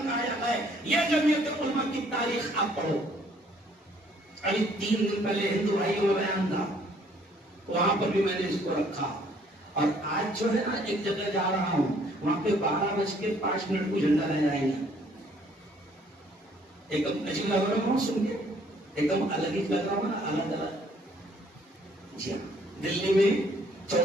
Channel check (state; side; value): normal; both; correlation 0.62